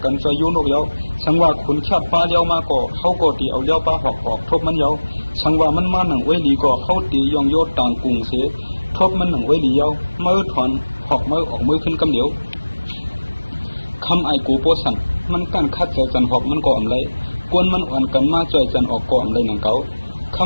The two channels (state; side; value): inverted; both; correlation -1.00